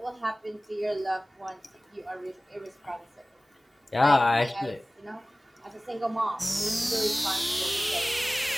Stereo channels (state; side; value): normal; both; correlation 0.98